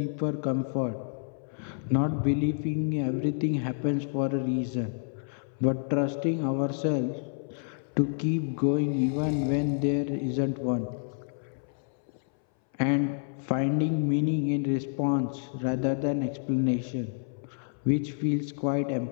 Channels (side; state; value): right; silent; 59 dB below the other